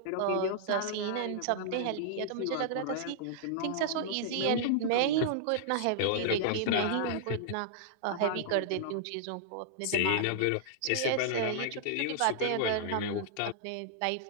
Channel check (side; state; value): both; different; correlation -0.01